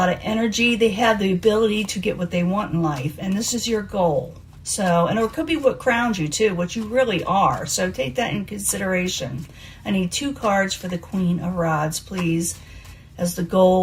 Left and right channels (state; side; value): identical; both; correlation 1.00